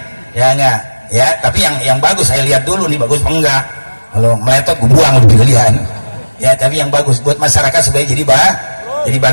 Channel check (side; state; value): both; inverted; correlation -1.00